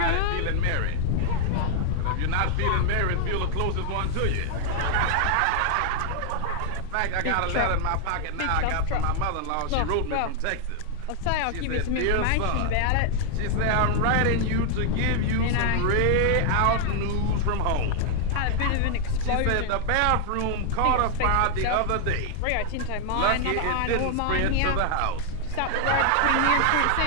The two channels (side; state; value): both; different; correlation 0.00